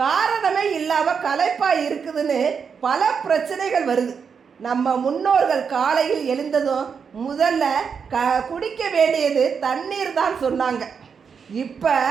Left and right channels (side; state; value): left; quieter; 6.3 dB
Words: காரணமே இல்லாமல் களைப்பாக இருக்குதுன்னு பல பிரச்சனைகள் வருது. நம்ம முன்னோர்கள் காலையில் எழுந்ததும் முதல்ல குடிக்க வேண்டியது தண்ணீர் தான் சொன்னாங்க. இப்போ